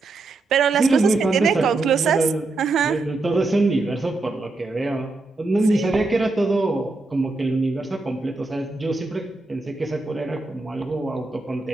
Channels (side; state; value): left; quieter; 3.4 dB